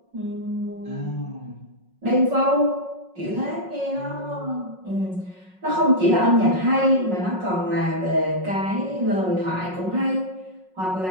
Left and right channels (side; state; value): left; late; 5.4 ms